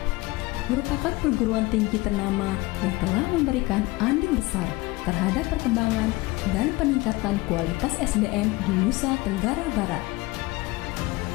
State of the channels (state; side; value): quieter; right; 21.5 dB